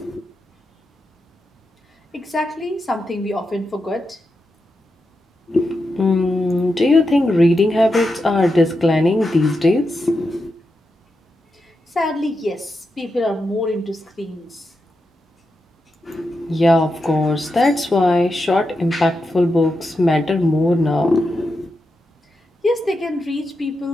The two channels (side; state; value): both; normal; correlation 0.87